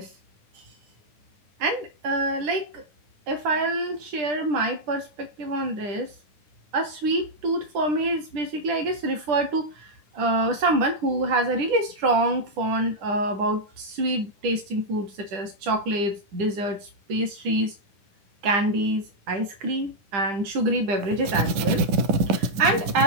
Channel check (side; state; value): left; late; 10 ms